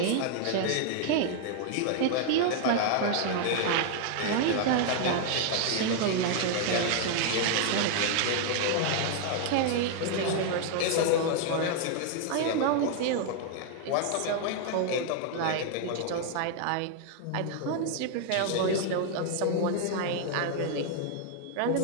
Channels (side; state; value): both; different; correlation 0.00